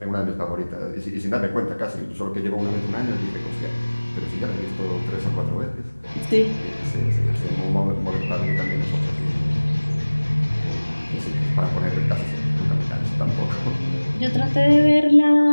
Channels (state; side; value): inverted; both; correlation -1.00